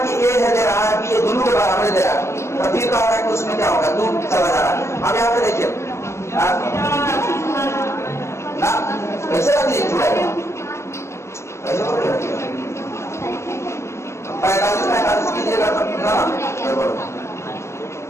कि A है दे रहा है कि ये दोनों के बराबर दे रहा है, तो फिर कहता है कि उसमें क्या होगा? 2 चला जा रहा है। अब यहाँ पे देखिए ना कैसे रख लीजिए 45 कीजिएगा तब ना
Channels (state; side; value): late; right; 0.13 ms